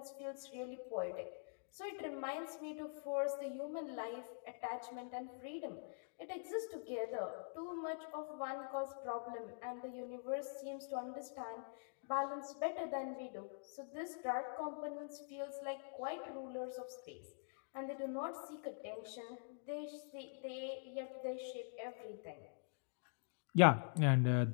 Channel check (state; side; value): silent; right; digital silence